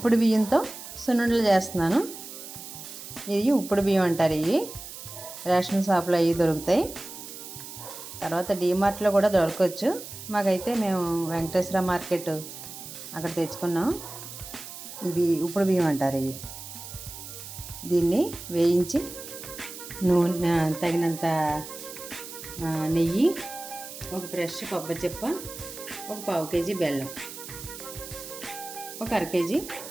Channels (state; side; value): noise; right; hiss, 12 dB below the sound